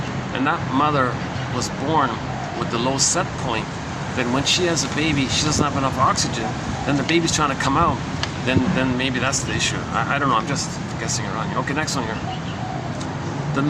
and that mother was born with the low set point, then when she has a baby, she doesn't have enough oxygen, then the baby's trying to come out, then maybe that's the issue. I don't know, I'm just guessing around here. Okay, next one here. The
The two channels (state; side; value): identical; both; correlation 1.00